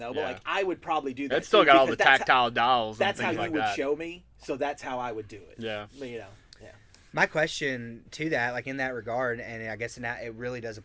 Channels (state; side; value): identical; both; correlation 1.00